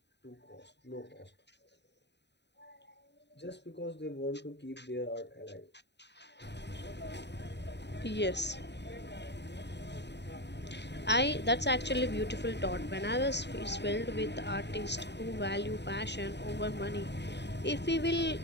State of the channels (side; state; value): right; late; 0.50 ms